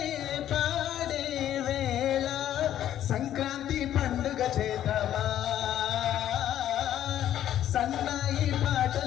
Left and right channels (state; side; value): quieter; right; 11.5 dB